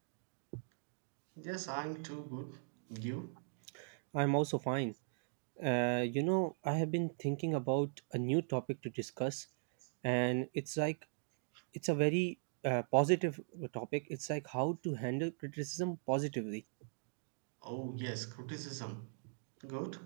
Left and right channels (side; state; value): left; silent; digital silence